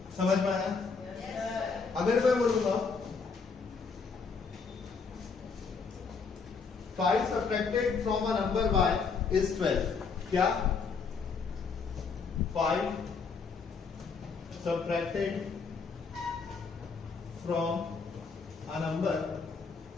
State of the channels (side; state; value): right; quieter; 5.1 dB